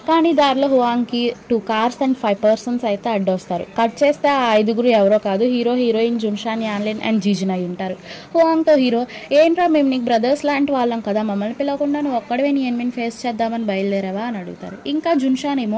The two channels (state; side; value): identical; both; correlation 1.00